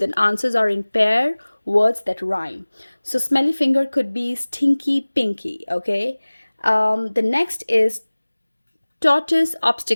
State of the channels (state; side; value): inverted; both; correlation -1.00